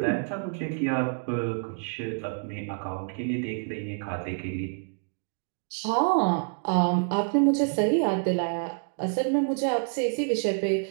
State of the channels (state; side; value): silent; left; 60 dB below the other